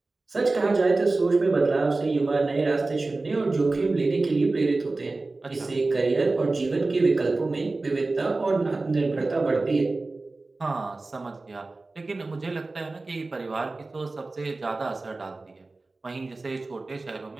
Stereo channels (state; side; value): quieter; left; 3.4 dB